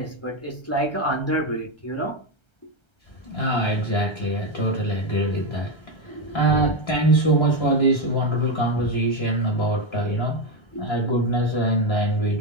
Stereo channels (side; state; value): right; late; 1.3 ms